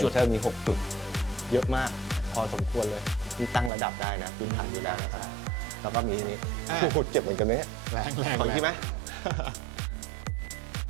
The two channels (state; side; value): drops out; left; at 3.7 s